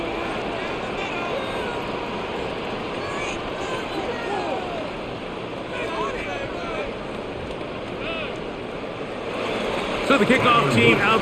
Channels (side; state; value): both; identical; correlation 1.00